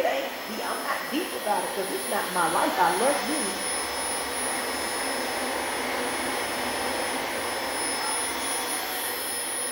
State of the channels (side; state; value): both; identical; correlation 1.00